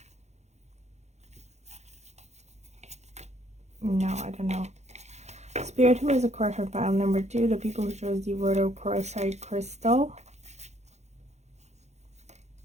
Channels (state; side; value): late; left; 0.33 ms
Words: No, I don't know. Spirit, who has a crush on pile number 2? The people who chose the rhodochrosite crystal.